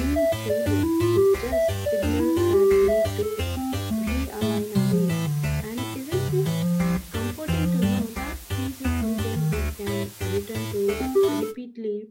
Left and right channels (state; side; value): identical; both; correlation 1.00